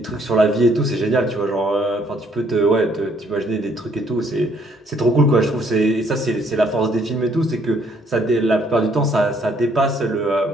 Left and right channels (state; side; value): normal; both; correlation 0.66